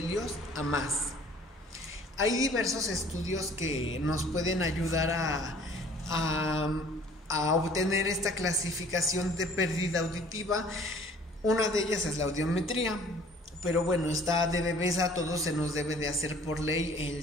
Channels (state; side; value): normal; both; correlation 0.52